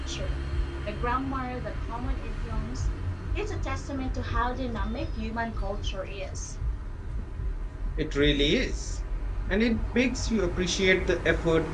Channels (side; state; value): both; identical; correlation 1.00